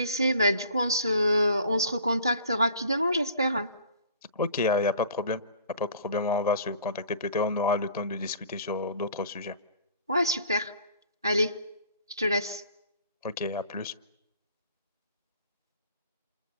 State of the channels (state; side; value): inverted; both; correlation -0.49